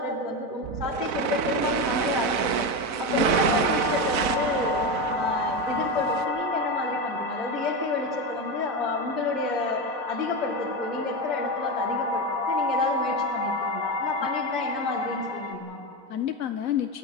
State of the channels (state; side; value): late; left; 4.0 ms